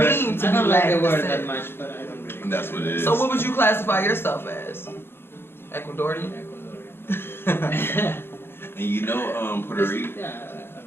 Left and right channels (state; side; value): late; right; 0.11 ms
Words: mean to I be don't like Latin the word descent? that much, but I don't really. And that's what it is. So what would you classify yourself as? Ecuadorian? Ecuadorian. And you know, Puerto Rico. Yeah, I don't